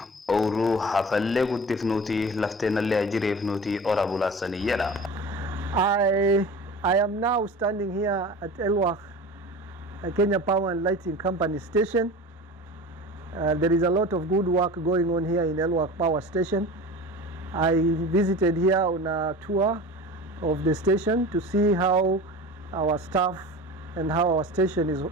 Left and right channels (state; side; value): normal; both; correlation 0.35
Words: أورو حفلة قد فنوتي لفتنا اللي أجري فنوتي أورا بولا سنية. I am now standing here at Elwak, Kenya Power and Lighting Company station. There is a lot of good work going on here in Elwak Power Station. I visited here on a tour of the station to see how our staff and how our station is